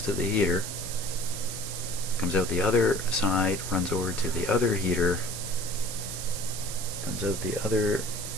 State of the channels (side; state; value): right; noise; hiss, 7 dB below the sound